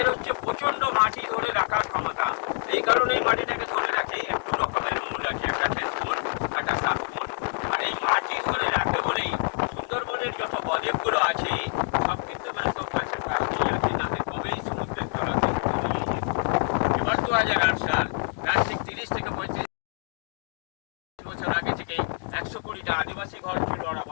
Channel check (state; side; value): silent; right; 60 dB below the other